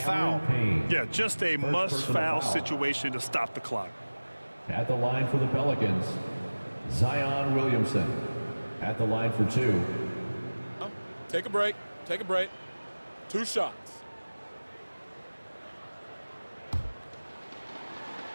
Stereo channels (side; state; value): both; inverted; correlation -1.00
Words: Yeah, just a must-foul situation to stop the clock. At the line for the Pelicans, Zion Williamson. At the line for 2. Take a break. Take a break. 2 shots.